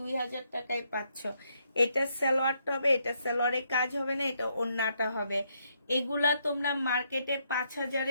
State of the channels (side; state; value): both; inverted; correlation -0.75